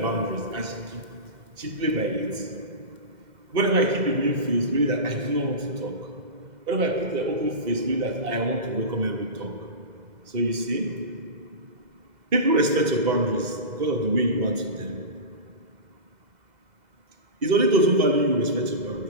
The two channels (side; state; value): left; late; 2.0 ms